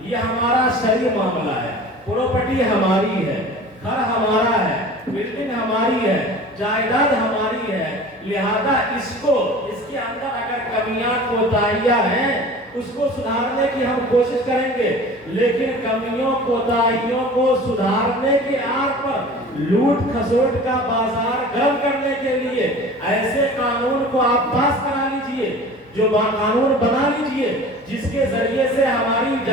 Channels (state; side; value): normal; both; correlation 0.41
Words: ये हमारा शरई मामला है, प्रॉपर्टी हमारी है, घर हमारा है, बिल्डिंग हमारी है, जायदाद हमारी है, लिहाजा इसके अंदर अगर कमियां कोताहियां हैं उसको सुधारने की हम कोशिश करेंगे, लेकिन कमियों कोताहियों को सुधारने के आड़ पर लूट खसोट का बाजार गर्म करने के लिए ऐसे कानून को आप पास करा लीजिए, जो कानून बना लीजिए जिसके जरिए से हमारी